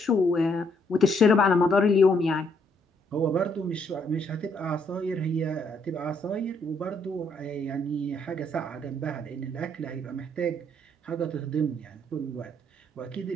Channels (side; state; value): both; normal; correlation 0.70